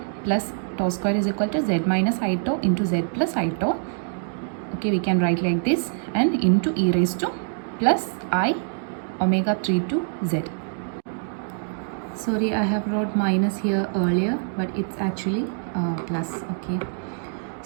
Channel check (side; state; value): left; silent; 62 dB below the other